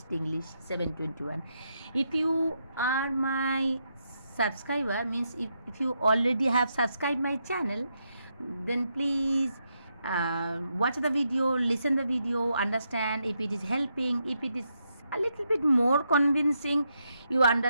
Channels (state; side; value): inverted; both; correlation -0.81